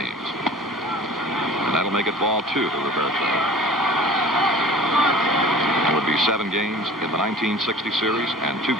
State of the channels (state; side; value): normal; both; correlation 0.44